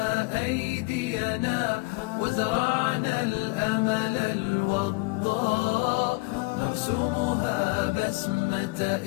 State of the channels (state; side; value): quieter; right; 25.9 dB